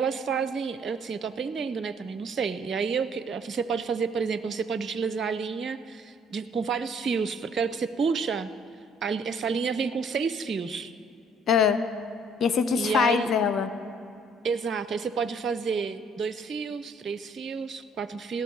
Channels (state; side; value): normal; both; correlation 0.61